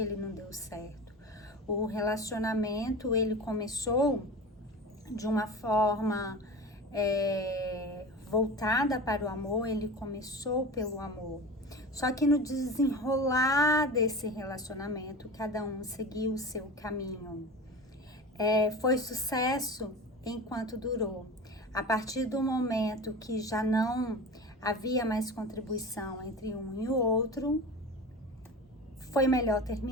não deu certo. O relacionamento, ele começou de uma forma voltada para o amor, ele começou pelo amor. Só que no desenrolar desse relacionamento, cada um seguiu o seu caminho. Foi sucesso enquanto durou. A partir do momento que já não havia mais contribuição entre um e o outro, foi melhor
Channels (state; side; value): normal; both; correlation 0.32